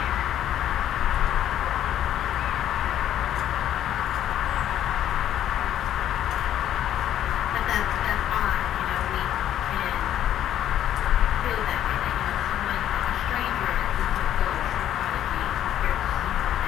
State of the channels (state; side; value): quieter; right; 11.2 dB